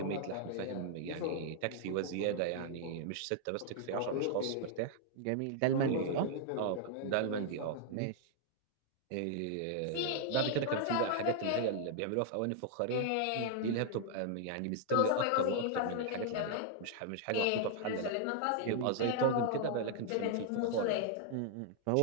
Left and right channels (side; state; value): both; different; correlation -0.01